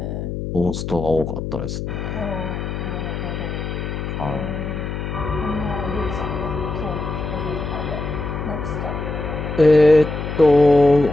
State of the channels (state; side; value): noise; left; hum, 5 dB below the sound